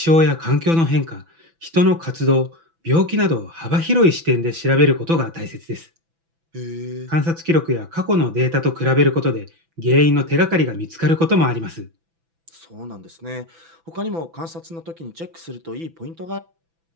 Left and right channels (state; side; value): late; left; 6.0 ms